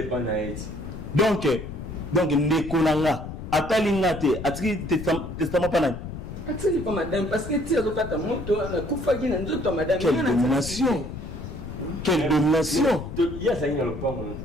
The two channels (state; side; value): noise; left; rumble, 9 dB below the sound